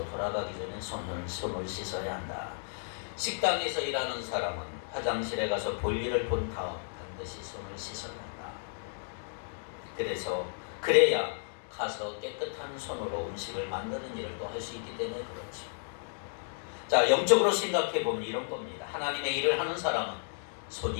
돌아가기 전에 손을 씻어야 한다. 식당에서 일하는 사람은 화장실에 가서 볼일을 본 다음 반드시 손을 씻어야 한다. 그래야 가서 깨끗한 손으로 음식을 만드는 일을 또 할 수 있기 때문에 그렇죠. 자, 영적으로 생각해 보면 이런 겁니다. 하나님의 일을 하는 사람은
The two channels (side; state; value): right; silent; digital silence